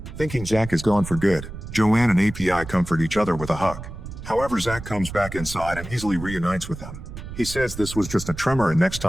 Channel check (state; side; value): noise; right; rumble, 11 dB below the sound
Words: Thinking Zach is gone for good, Joanne and API comfort each other with a hug. However, Zach comes back inside and easily reunites with them. He says this was just a tremor and next